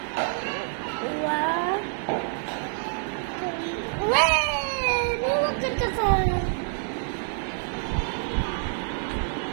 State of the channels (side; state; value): left; silent; 60 dB below the other